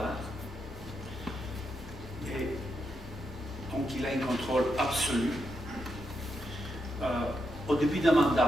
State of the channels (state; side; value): normal; both; correlation 0.83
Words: et donc il a un contrôle absolu. Au début d'un